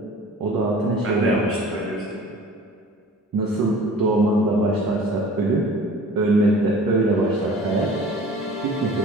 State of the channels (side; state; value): both; normal; correlation 0.45